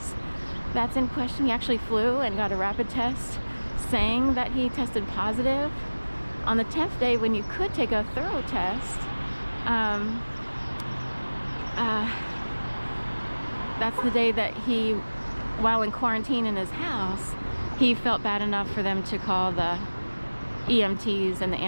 That's in question. He actually flew and got a rapid test saying that he tested positive. On the 10th day, when you could take a thorough test, that's the day that he, while in quarantine in his house, he felt bad enough for them to call the EMTs and the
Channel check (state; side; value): inverted; both; correlation -1.00